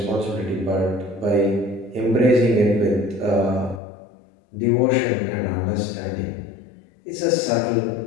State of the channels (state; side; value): drops out; right; at 3.8 s